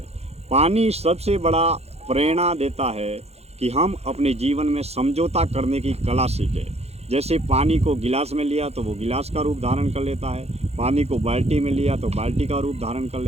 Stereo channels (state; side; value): late; left; 0.30 ms